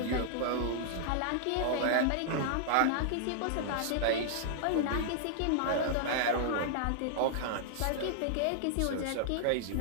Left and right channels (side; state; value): both; different; correlation -0.01